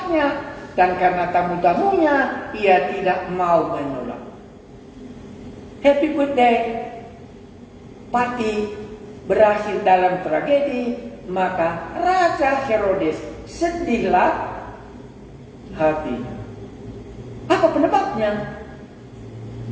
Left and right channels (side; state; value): both; identical; correlation 1.00